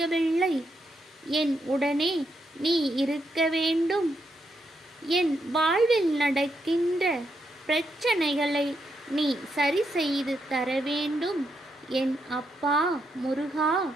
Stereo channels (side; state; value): both; normal; correlation 0.80